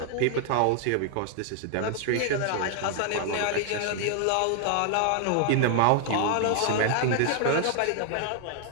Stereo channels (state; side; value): different; both; correlation 0.00